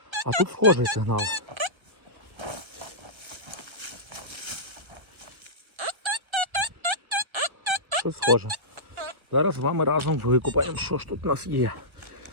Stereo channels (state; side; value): late; left; 1.3 ms